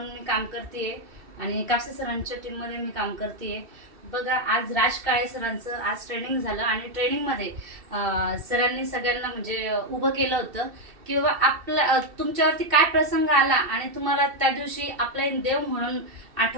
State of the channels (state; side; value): late; left; 2.7 ms